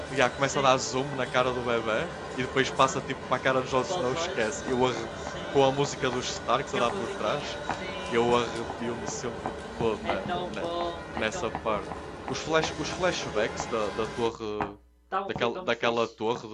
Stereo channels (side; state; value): both; identical; correlation 1.00